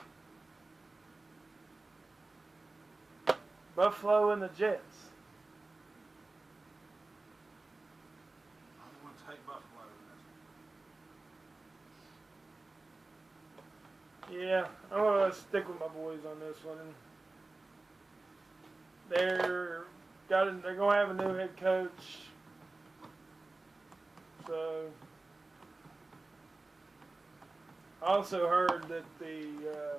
Buffalo and the Jets. I'm going to take Buffalo in this one. Yeah, I'm going to stick with my boys on this one. They're going to have a new head coach. So, I also heard that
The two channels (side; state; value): left; quieter; 3.2 dB